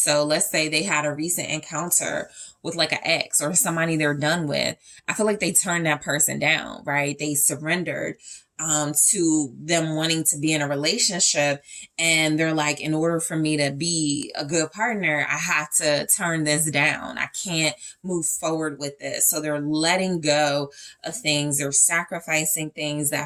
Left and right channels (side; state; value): both; identical; correlation 1.00